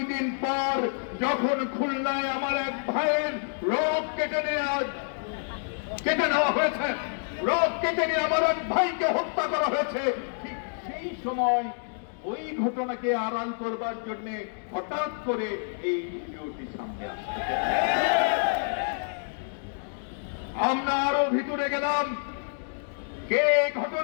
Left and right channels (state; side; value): silent; right; digital silence